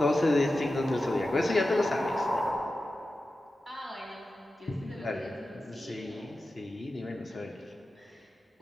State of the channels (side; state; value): both; normal; correlation 0.93